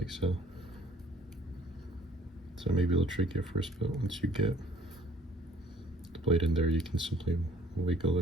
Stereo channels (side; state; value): both; normal; correlation 0.57